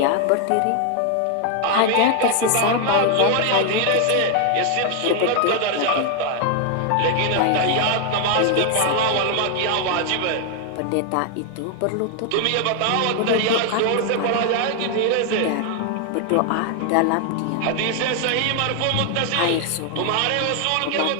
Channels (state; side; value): different; both; correlation 0.00